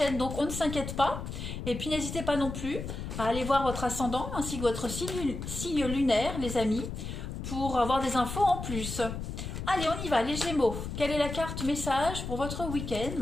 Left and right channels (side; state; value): left; noise; rumble, 6 dB below the sound